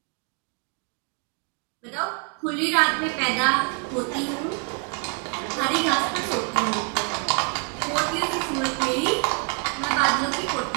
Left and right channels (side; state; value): left; quieter; 36.8 dB